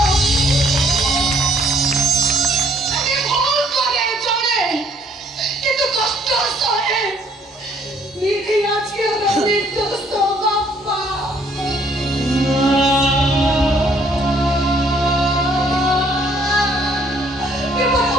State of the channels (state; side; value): normal; both; correlation 0.64